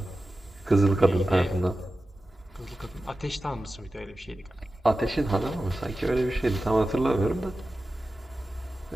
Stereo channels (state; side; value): normal; both; correlation 0.94